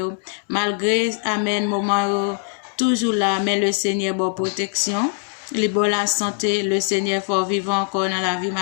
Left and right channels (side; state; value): right; silent; 57 dB below the other